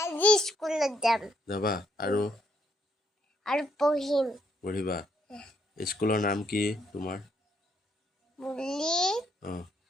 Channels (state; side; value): normal; both; correlation 0.73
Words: স্কুলত যাবা আৰু পঢ়িবা স্কুলৰ নাম কি তোমাৰ